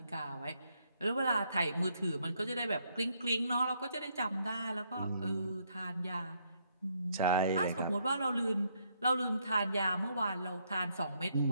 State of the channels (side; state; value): both; inverted; correlation -0.73